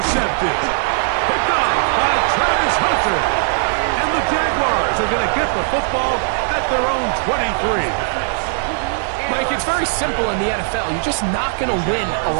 Picked off by Travis Hunter. And the Jaguars are going to get the football at their own 23. Mike, it's very simple in the NFL. You're just not going to win a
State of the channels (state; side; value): silent; left; digital silence